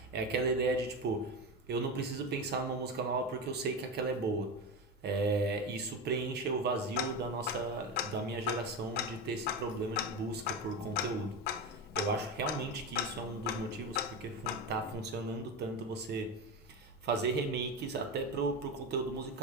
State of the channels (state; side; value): normal; both; correlation 0.19